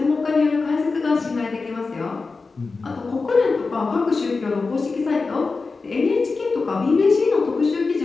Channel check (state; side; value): quieter; right; 4.1 dB